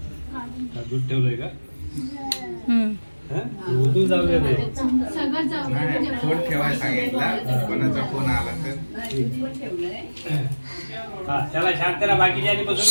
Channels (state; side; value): inverted; both; correlation -1.00